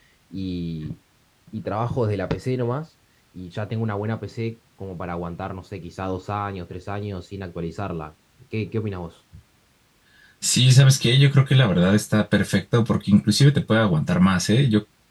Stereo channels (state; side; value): identical; both; correlation 1.00